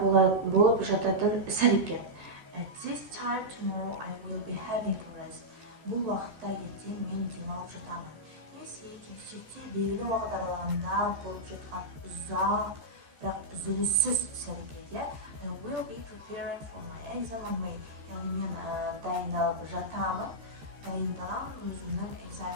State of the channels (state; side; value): late; left; 13 ms